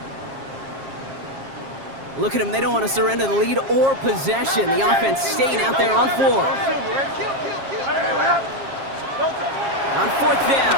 Look at them, they don't want to surrender the lead or possession. The offense staying out there on 4. On 4th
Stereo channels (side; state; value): left; late; 7.4 ms